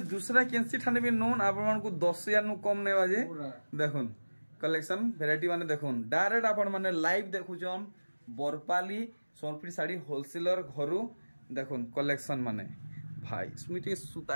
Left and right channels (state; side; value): inverted; both; correlation -1.00